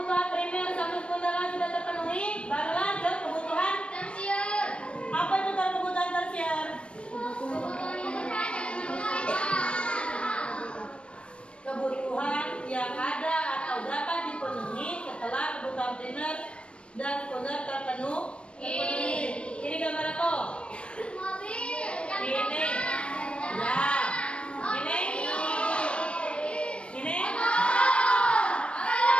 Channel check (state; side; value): late; right; 0.059 ms